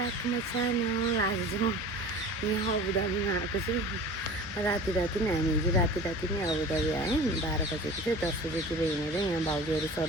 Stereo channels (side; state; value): both; normal; correlation 0.39